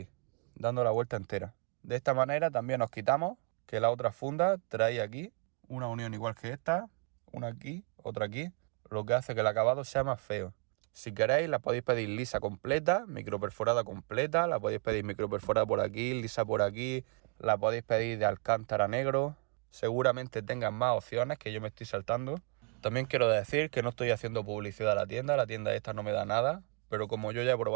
dando la vuelta entera. De esta manera también nos quitamos que la otra funda trae aquí una unión igual que esta, una aquí, otra aquí, lo que hace que el acabado sea más feo. Si queréis la podéis pedir lisa completa, microperforada completa, la podéis pedir microperforada por aquí, lisa por aquí, la podéis pedir de alcántara negro. Seguramente tengan más opciones que yo me estoy saltando. También quiero decir que no estoy haciendo publicidad a la tienda esta no me da nada, pero como yo ya he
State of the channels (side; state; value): left; quieter; 37.5 dB